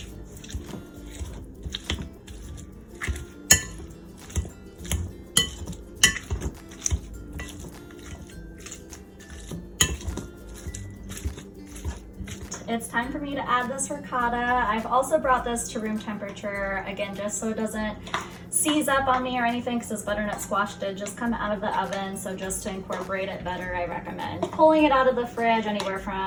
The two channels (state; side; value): identical; both; correlation 1.00